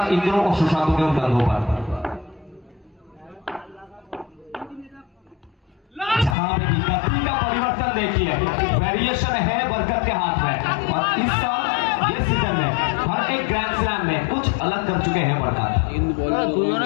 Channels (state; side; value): drops out; right; at 6.4 s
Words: इन दोनों को सुशांत के कंधों पर। जहां पे गति का परिवर्तन देखिए, वेरिएशन है बरकत के हाथ में, और इस साल ये सीजन में हर एक ग्रैंड स्लैम में कुछ अलग कर चुके हैं बरकत। इन बॉलर दोनों